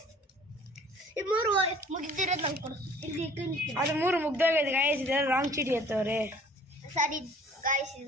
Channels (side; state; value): both; normal; correlation 0.52